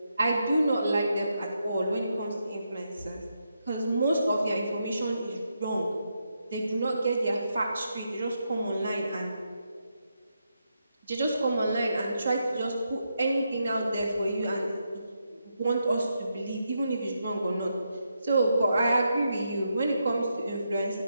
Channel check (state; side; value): inverted; both; correlation -0.83